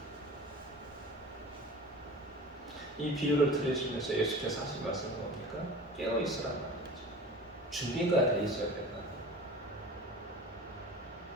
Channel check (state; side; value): normal; both; correlation 0.37